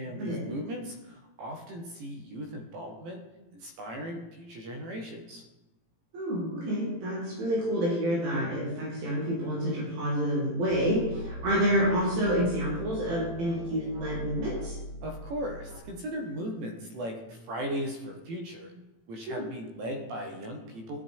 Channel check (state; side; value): late; left; 18 ms